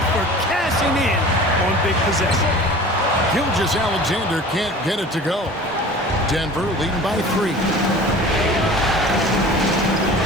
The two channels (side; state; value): both; normal; correlation 0.41